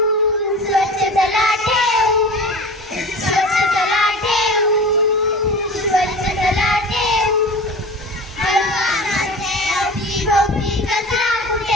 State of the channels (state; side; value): normal; both; correlation 0.36